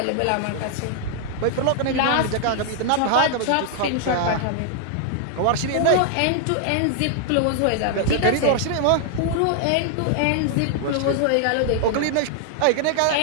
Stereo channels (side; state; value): both; different; correlation 0.00